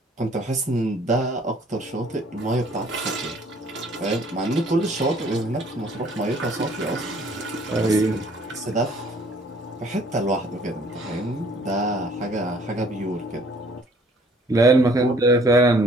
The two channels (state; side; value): normal; both; correlation 0.58